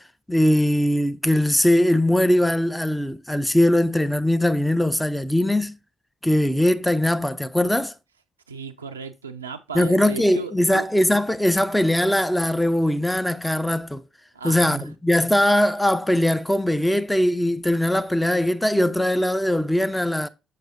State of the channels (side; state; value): both; normal; correlation 0.97